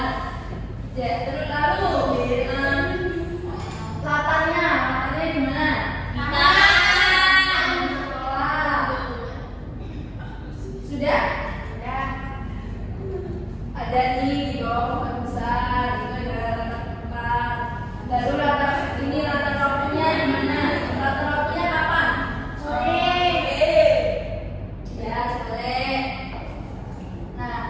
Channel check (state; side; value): identical; both; correlation 1.00